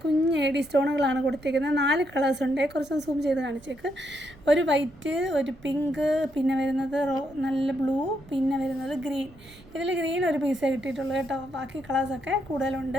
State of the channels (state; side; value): noise; right; rumble, 23 dB below the sound